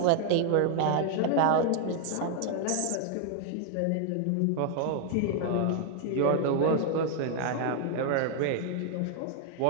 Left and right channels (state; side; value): different; both; correlation 0.00